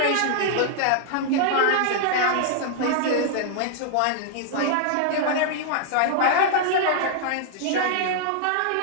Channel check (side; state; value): both; different; correlation -0.01